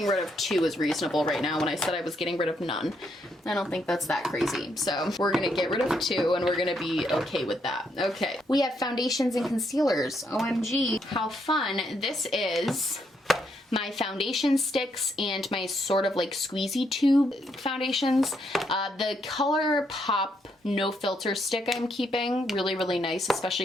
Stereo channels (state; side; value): normal; both; correlation 0.76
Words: rid of two is reasonable right now when I said I was getting rid of none. I don't think that's that crazy. So we're gonna get rid of two and we're gonna be okay with that. Okay. We have foundations and concealers. OMG, how fun. This is my foundation sticks and my sort of like squeezy tube foundations. The ColourPop No Filter stick I'm keeping, really, really nice,